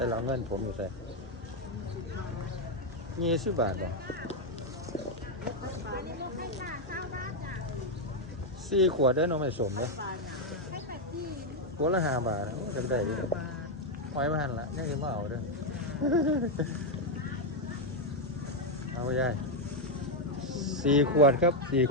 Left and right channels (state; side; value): normal; both; correlation 0.02